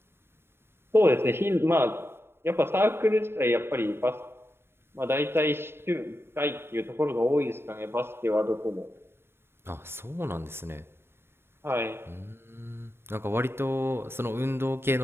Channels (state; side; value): late; left; 0.11 ms